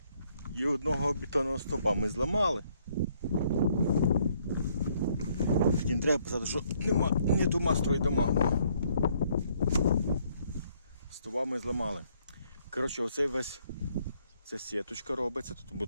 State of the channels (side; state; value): both; inverted; correlation -0.68